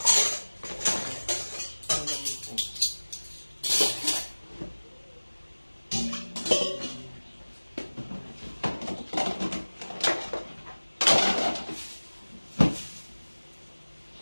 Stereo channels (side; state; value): both; inverted; correlation -1.00